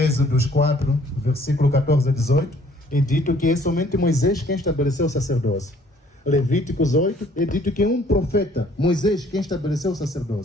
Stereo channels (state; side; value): normal; both; correlation 0.59